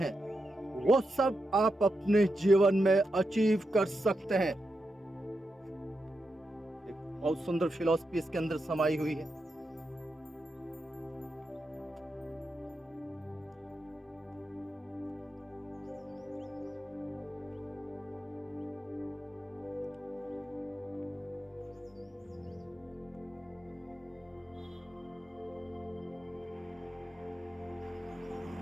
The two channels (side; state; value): both; normal; correlation 0.87